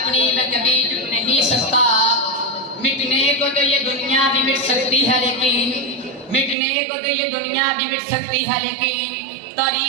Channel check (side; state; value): left; drops out; at 6.6 s